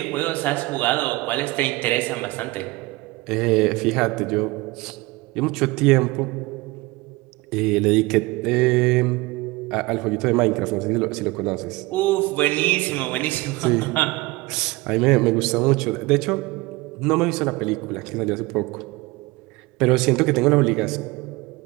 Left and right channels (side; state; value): left; quieter; 21.8 dB